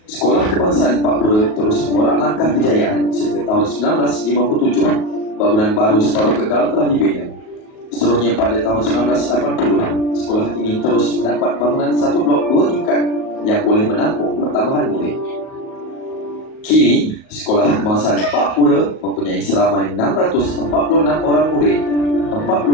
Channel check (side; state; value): right; late; 38 ms